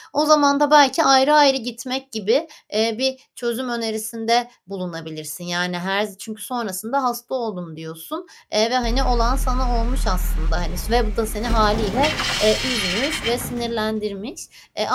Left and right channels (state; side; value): identical; both; correlation 1.00